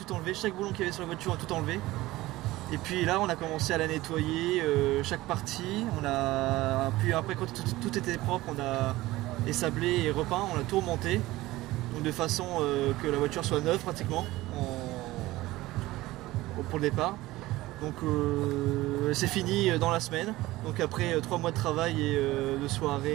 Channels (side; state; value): left; quieter; 18.0 dB